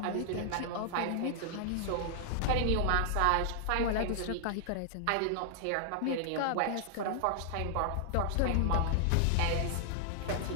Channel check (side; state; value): both; different; correlation -0.01